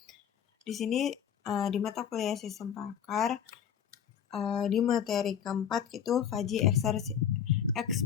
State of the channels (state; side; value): quieter; right; 8.7 dB